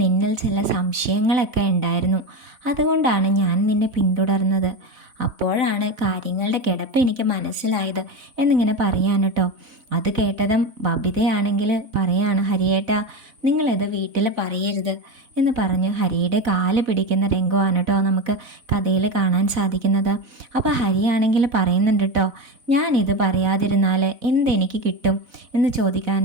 നിന്നിൽ ചില സംശയങ്ങളൊക്കെ ഉണ്ടായിരുന്നു. അതുകൊണ്ടാണ് ഞാൻ നിന്നെ പിന്തുടർന്നത്. അപ്പോഴാണ് കാര്യങ്ങളുടെ കിടപ്പ് എനിക്ക് മനസ്സിലായത് എന്നിങ്ങനെ പറയാൻ കേട്ടോ. അത് കേട്ടതും ബബിതയാണെങ്കിൽ പറയാണ്, ഹരിയേട്ടാ നിങ്ങളിത് വീട്ടിൽ പറയരുത് എന്ന് പറഞ്ഞ് ഹരിയുടെ കാല് പിടിക്കുന്ന രംഗമാണ് കേട്ടോ നമുക്ക് കഥയിൽ കാണാൻ സാധിക്കുന്നത്. അപ്പോൾ ഹരിയാണെങ്കിൽ പറയുന്നുണ്ട് കേട്ടോ, ഞാനിത് പറയാതിരുന്നാൽ എന്തെനിക്ക് കിട്ടും എന്ന് ചോദിക്കാൻ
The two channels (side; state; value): left; late; 3.6 ms